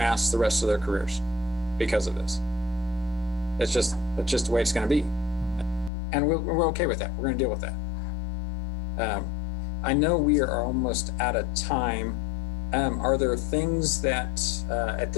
the rest of their careers because of this. It's just the way it's going to be, and we're okay with that. We're going to deal with that. I know we are almost out of time. Are there things that at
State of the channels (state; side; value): drops out; right; at 5.9 s